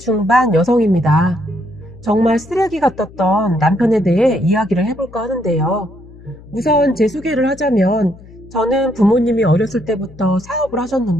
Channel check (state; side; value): noise; left; hum, 20 dB below the sound